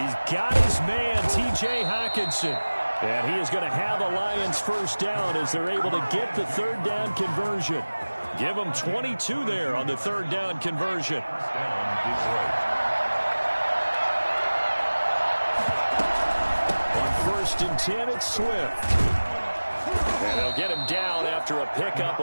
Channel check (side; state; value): both; inverted; correlation -1.00